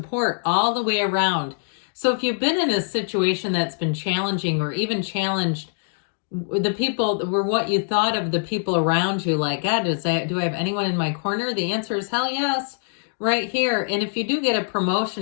all the way around. So if you've been in a situation that's been challenging or even challenged the people were what you thought of the people around you, like, God, do I have anyone in my corner? The answer is hell yes, right here. And if you do get a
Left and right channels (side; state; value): right; silent; digital silence